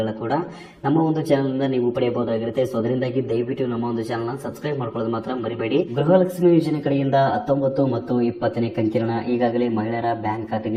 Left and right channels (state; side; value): identical; both; correlation 1.00